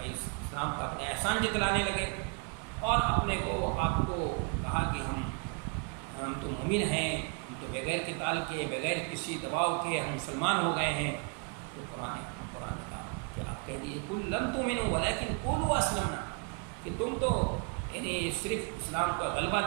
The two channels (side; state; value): left; quieter; 34.1 dB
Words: اسلام کا اپنے احسان جتلانے لگے، اور اپنے کو آپ کو کہا کہ ہم تو مومن ہیں، ہم تو بغیر قتال کے، بغیر کسی دباؤ کے ہم مسلمان ہو گئے ہیں۔ تو قرآن نے کہا کہ آپ کہہ دیجیے قل لم تؤمنوا ولكن قولوا اسلمنا، کہ تم تو یعنی صرف اسلام کا غلبہ